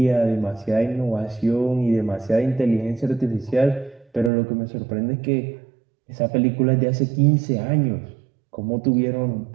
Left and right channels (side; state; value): left; drops out; at 4.3 s